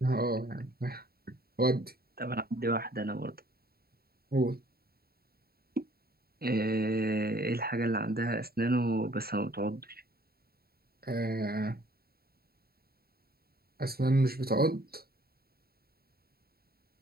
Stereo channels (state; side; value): late; left; 0.45 ms